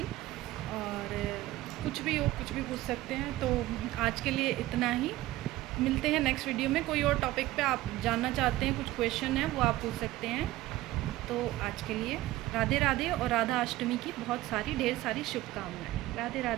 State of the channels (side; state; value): left; quieter; 16.8 dB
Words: और कुछ भी हो, कुछ भी पूछ सकते हैं। तो आज के लिए इतना ही, मिलते हैं नेक्स्ट वीडियो में। कोई और टॉपिक पे आप जानना चाहते हैं, कुछ क्वेश्चन है वो आप पूछ सकते हैं। तो आज के लिए राधे राधे, और राधा अष्टमी की बहुत सारी ढेर सारी शुभकामनाएं। राधे